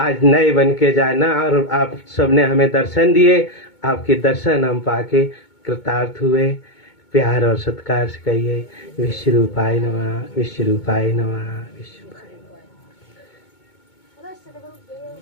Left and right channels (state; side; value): late; right; 2.2 ms